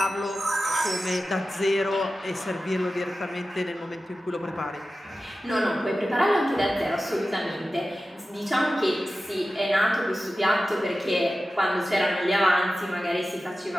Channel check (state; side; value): normal; both; correlation 0.94